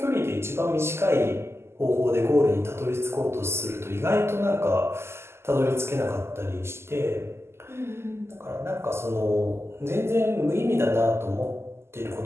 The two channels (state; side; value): late; left; 0.12 ms